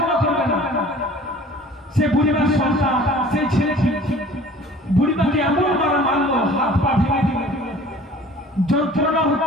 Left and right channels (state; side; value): normal; both; correlation 0.48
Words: করবে না? সে বুড়িমার সন্তান, সেই ছেলেটি বুড়িমাকে এমন মারা মারলো, হাত পা ভেঙে দিল, যন্ত্রণা